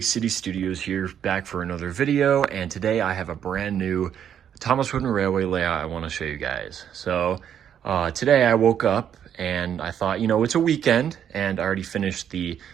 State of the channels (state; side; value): quieter; left; 9.2 dB